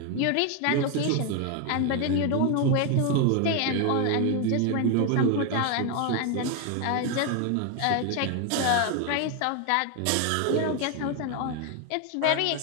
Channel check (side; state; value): both; different; correlation 0.01